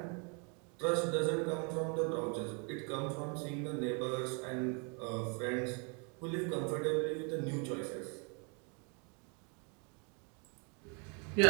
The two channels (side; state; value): left; quieter; 35.5 dB